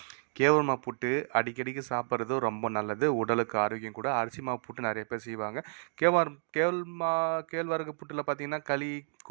கேவுருமா புட்டு அடிக்கடிக்கு சாப்பிட்றது ரொம்ப நல்லது. உடலுக்கு ஆரோக்கியம் கூட. அரிசி மாவு புட்டு நெறைய பேர் செய்வாங்க. கேழ்வரகு புட்டுல பார்த்தீங்கன்னா, களி,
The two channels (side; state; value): left; silent; digital silence